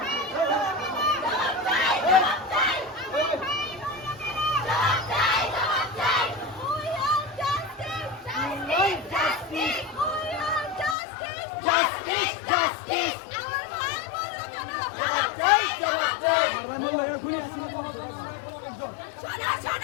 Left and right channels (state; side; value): drops out; right; at 11.0 s